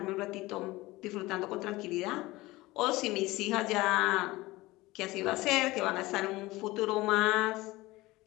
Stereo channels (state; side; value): quieter; right; 19.8 dB